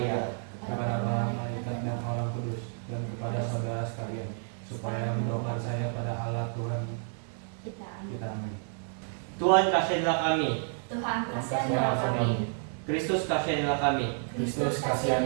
Kepada para malaikat dan orang kudus, dan kepada saudara sekalian, supaya mendoakan saya pada Allah Tuhan Kita kita. Amin. Tuhan kasihilah kami, Tuhan kasihilah kami. Kristus kasihilah kami, Kristus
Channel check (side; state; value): left; silent; 58 dB below the other